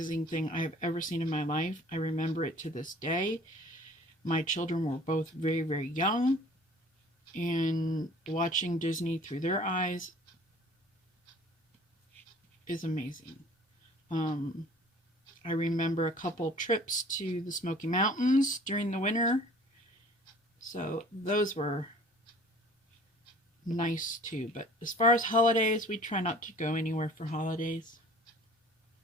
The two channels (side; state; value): both; normal; correlation 0.50